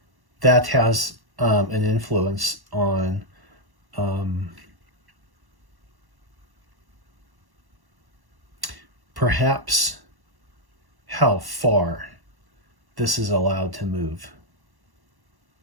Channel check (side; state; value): left; late; 1.1 ms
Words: that has an influence on perhaps how far this is allowed to move